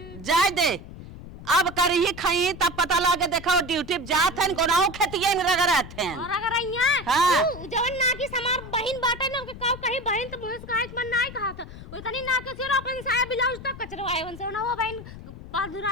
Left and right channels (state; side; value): noise; left; rumble, 14 dB below the sound